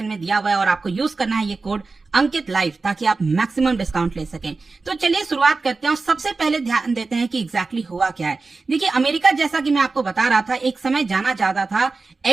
में दिया हुआ है और आपको यूज करना है ये कोड अंकित लाइव ताकि आप मैक्सिमम डिस्काउंट ले सकें। तो चलिए शुरुआत करते हैं और सबसे पहले ध्यान देते हैं कि एग्जैक्टली हुआ क्या है। देखिए, अमेरिका जैसा कि मैं आपको बता रहा था एक समय जाना जाता था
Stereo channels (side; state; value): left; quieter; 3.9 dB